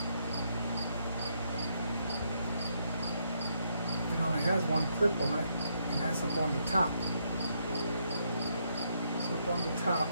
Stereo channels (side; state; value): both; inverted; correlation -0.76